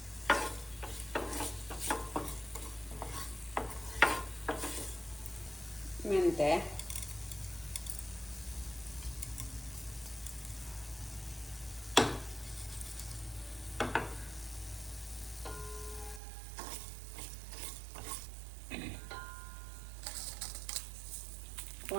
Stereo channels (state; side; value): drops out; left; at 16.2 s